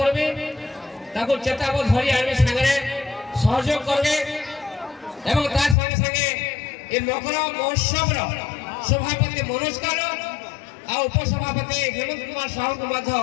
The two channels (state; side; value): drops out; right; at 5.8 s